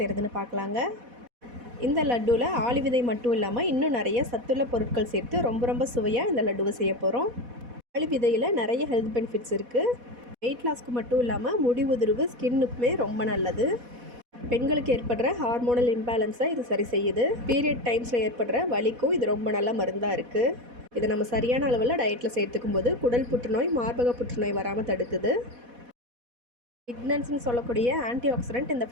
பார்க்கலாங்க. இந்த லட்டுவில் ஆளி விதை மட்டும் இல்லாமல் இன்னும் நிறைய சத்துள்ள பொருட்கள் சேர்த்து ரொம்ப சுவையாக இந்த லட்டுவை செய்ய போகிறோம். ஆளி விதையில் நிறைய ஹெல்த் பெனிஃபிட்ஸ் இருக்குது. வெயிட் லாஸ்க்கு மட்டும் இல்லாமல் முடி உதிர்வு, ஸ்கின்னுக்குமே ரொம்ப நல்லது. பெண்களுக்கு ஏற்படுற ஹார்மோனல் இம்பேலன்ஸை இது சரி செய்யுது. பீரியட் டைம்ஸில் ஏற்படுற வலிக்கும் இது ரொம்ப நல்ல மருந்தாக இருக்குது. இதை நம்ம சரியான அளவில் டயட்டில் சேர்த்துக்கும் போது குடல் புற்றுநோய், மார்பக புற்றுநோய் வராமல் தடுக்குது. லிக்னன்ஸ்னு சொல்லக்கூடிய ஆன்டி ஆக்சிடென்ட் இந்த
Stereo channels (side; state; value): left; late; 4.1 ms